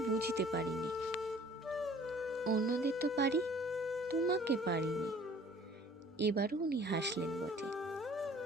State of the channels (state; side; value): normal; both; correlation 0.52